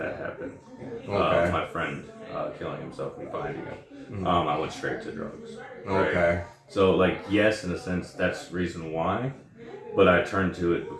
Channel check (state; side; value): identical; both; correlation 1.00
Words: happened. Okay. My friend killing himself and finding him. I went straight to drugs. Right? Okay. So like yes, in a sense, that's the reason why. But I turned to it